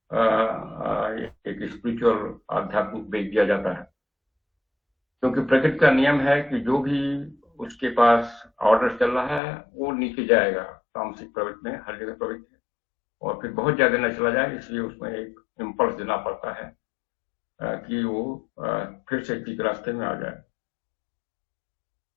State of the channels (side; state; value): right; drops out; at 9.4 s